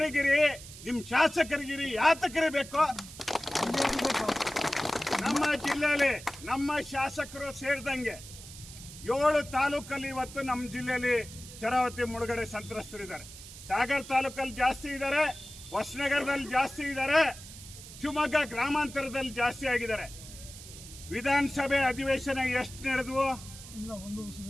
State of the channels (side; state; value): right; noise; hiss, 15 dB below the sound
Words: ನಿಮ್ಮ ಶಾಸಕರಿಗಿರಿ ಯಾತಕರಿ ಬೇಕು? ನಮ್ಮ ಜಿಲ್ಲೆಯಲ್ಲಿ ನಮ್ಮ ಶಾಸಕರು ಸೇರಿದಂಗೆ 7 ತಾಲೂಕಲ್ಲಿ ಇವತ್ತು ನಮ್ಮ ಜಿಲ್ಲೆಯಲ್ಲಿ ಶರಾವತಿ ಮುಳುಗಡೆ ಸಂತ್ರಸ್ತರಿದ್ದಾರೆ. ಸಾಗರ ತಾಲೂಕಲ್ಲಿ ಜಾಸ್ತಿ ಇದ್ದಾರೆ, ಹೊಸನಗರದಲ್ಲಿ ಜಾಸ್ತಿ ಇದ್ದಾರೆ, ಶಿವಮೊಗ್ಗ ಗ್ರಾಮಾಂತರದಲ್ಲಿ ಜಾಸ್ತಿ ಆಗಿದ್ದಾರೆ. ವಿಧಾನಸಭೆ ಅಧಿವೇಶನ ಎಷ್ಟು ನಡೆದವು?